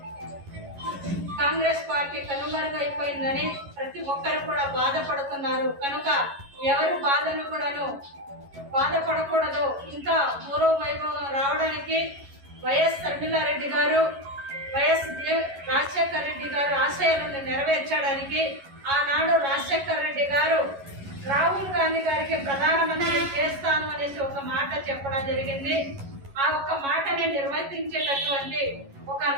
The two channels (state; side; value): late; left; 11 ms